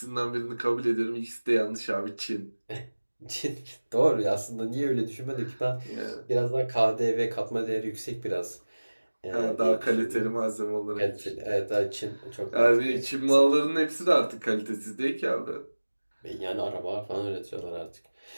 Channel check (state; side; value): inverted; both; correlation -1.00